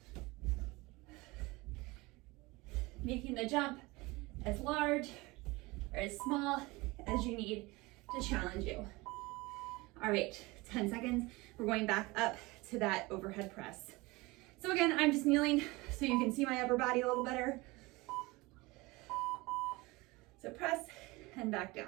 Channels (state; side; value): quieter; left; 22.8 dB